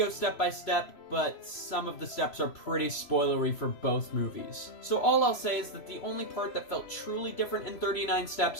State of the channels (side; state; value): right; late; 3.0 ms